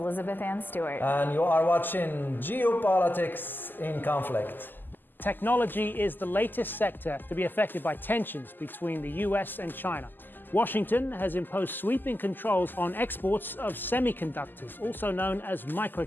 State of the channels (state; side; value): late; right; 0.090 ms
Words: Ann Stewart. And you are watching Geopolitics in Conflict. Technology is the latest sector to be affected by tensions between the US and China. Washington has imposed sweeping controls on exports of semiconductors, also known as